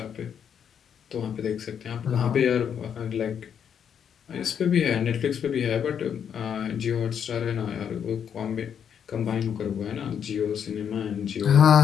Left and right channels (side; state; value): right; quieter; 8.1 dB